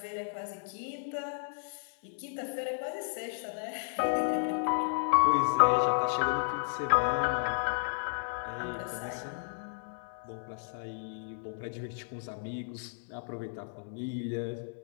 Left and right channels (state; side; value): silent; right; 56 dB below the other